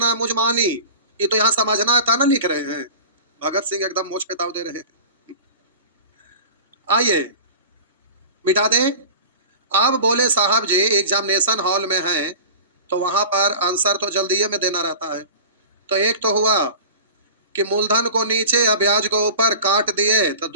है मुझ मानी। ये तो यहाँ समझना था ना, लिख रहे हैं। भगत सिंह एकदम मोच पे ताव दे रहे हैं। आइए मिटा दें। आप बोले साहब जी एग्जामिनेशन हॉल में हैं, तो वहां पर आंसर तो जल्दी में देना रहता है। तो एक तो हुआ कि मूलधन को नीचे या ब्याज को ऊपर काट दिए तो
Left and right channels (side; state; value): both; inverted; correlation -0.37